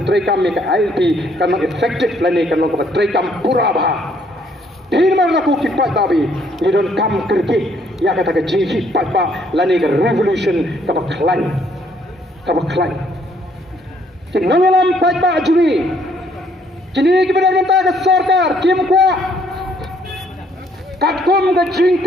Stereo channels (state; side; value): normal; both; correlation 0.66